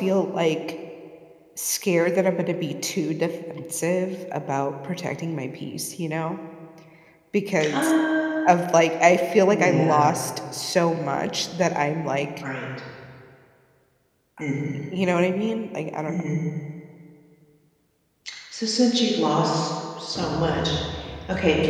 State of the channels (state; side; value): identical; both; correlation 1.00